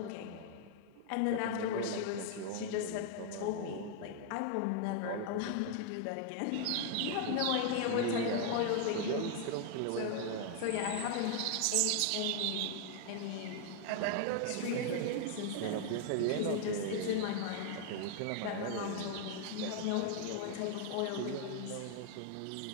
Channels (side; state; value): both; different; correlation 0.00